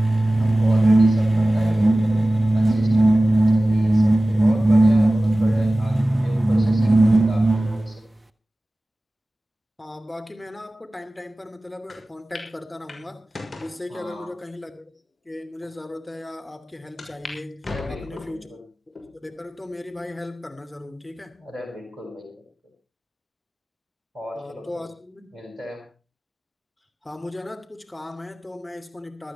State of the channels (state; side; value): normal; both; correlation 0.97